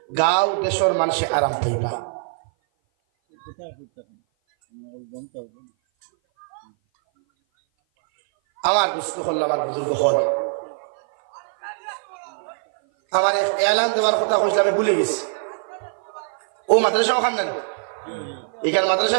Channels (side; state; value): left; silent; 57 dB below the other